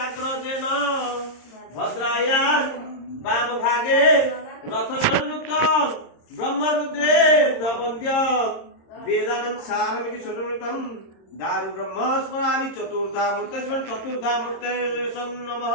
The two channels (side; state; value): right; late; 26 ms